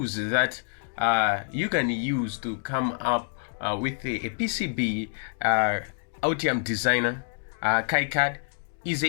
that you can use to come up with a PCB, Altium Designer, KiCad,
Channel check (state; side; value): silent; right; digital silence